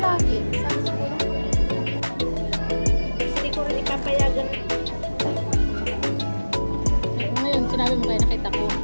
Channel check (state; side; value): inverted; both; correlation -1.00